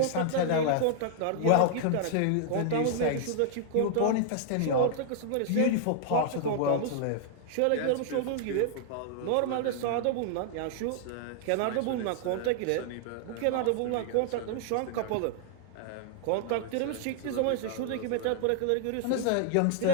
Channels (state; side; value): different; both; correlation -0.01